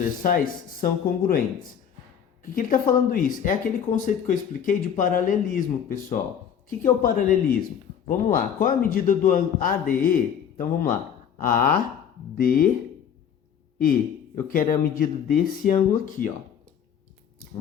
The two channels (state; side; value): quieter; right; 8.3 dB